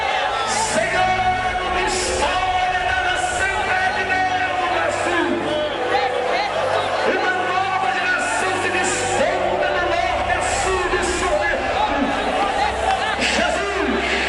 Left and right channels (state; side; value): identical; both; correlation 1.00